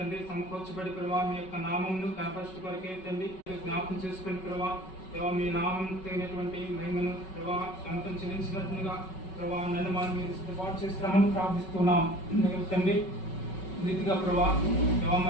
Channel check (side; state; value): right; late; 5.3 ms